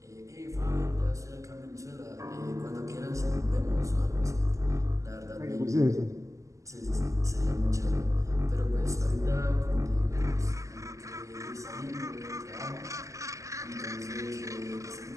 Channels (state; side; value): late; left; 0.16 ms